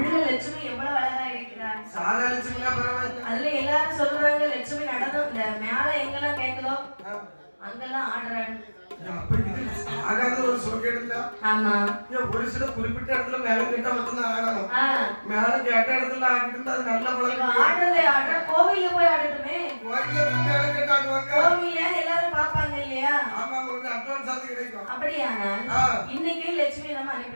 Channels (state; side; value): inverted; both; correlation -1.00